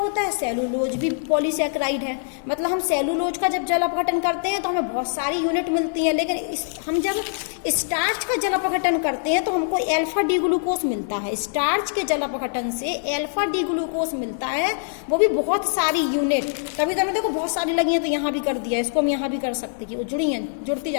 है, सेलुलोज भी पॉलीसैकेराइड है। मतलब हम सेलुलोज का जब जल अपघटन करते हैं तो हमें बहुत सारी यूनिट मिलती हैं, लेकिन हम जब स्टार्च का जल अपघटन करते हैं तो हमको अल्फा डी ग्लूकोज मिलता है। स्टार्च के जल अपघटन से अल्फा डी ग्लूकोज मिलता है, वो भी बहुत सारी यूनिट। तभी तो देखो बहुत सारी लगी हैं, तो यहाँ भी कर दिया, इसको हम यहाँ भी कर सकते कि वो जुड़ी हैं, जुड़ती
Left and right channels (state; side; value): silent; right; digital silence